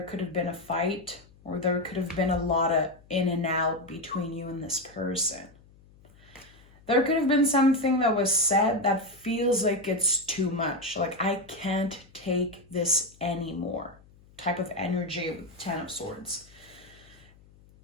could have been a fight, or there could have been a lot of in and out between you and this person. There could have been something that was said that feels like it's too much. Like, I can't take this anymore. Type of energy with Ten of Swords.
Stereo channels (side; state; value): left; noise; hum, 26 dB below the sound